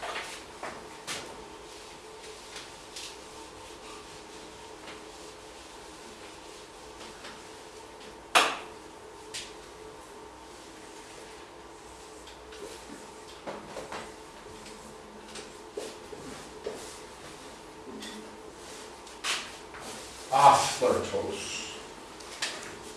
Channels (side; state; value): both; identical; correlation 1.00